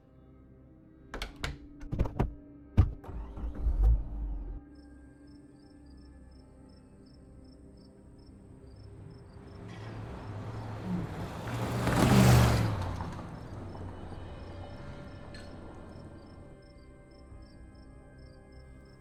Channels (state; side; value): identical; both; correlation 1.00